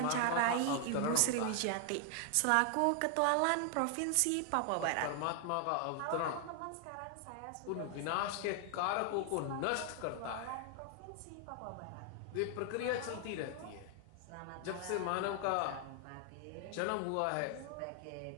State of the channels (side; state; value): both; different; correlation 0.00